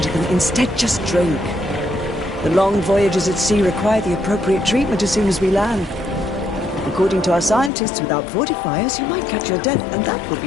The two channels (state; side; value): drops out; right; at 7.7 s